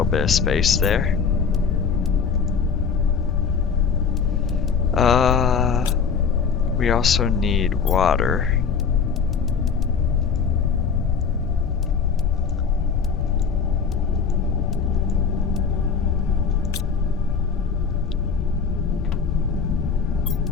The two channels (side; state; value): right; quieter; 6.0 dB